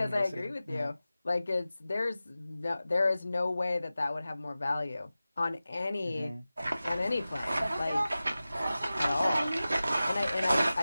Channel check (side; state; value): both; inverted; correlation -0.95